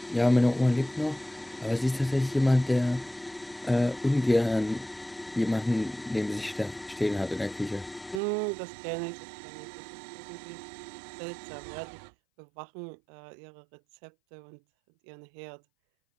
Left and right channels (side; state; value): left; drops out; at 8.2 s